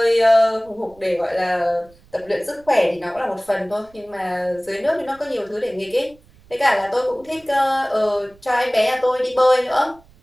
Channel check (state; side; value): noise; right; rumble, 28 dB below the sound